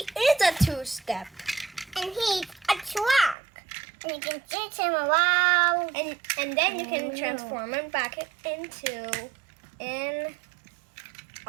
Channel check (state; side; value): drops out; left; at 3.4 s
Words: a 2-step. And he's a truck. And you can chase him around. And then you can transform him back into an